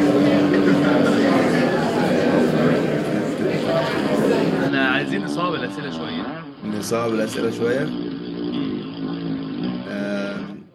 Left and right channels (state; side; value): identical; both; correlation 1.00